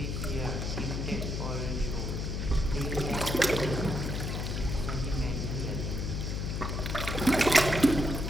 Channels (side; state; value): left; noise; hum, 2 dB below the sound